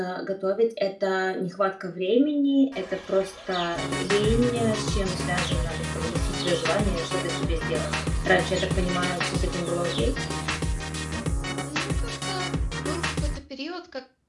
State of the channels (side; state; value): both; identical; correlation 1.00